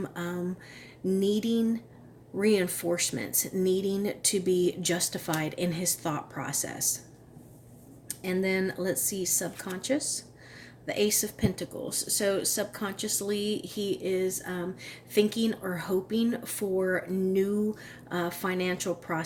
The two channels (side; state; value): both; identical; correlation 1.00